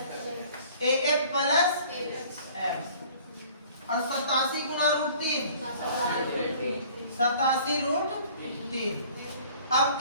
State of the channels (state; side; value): inverted; both; correlation -0.51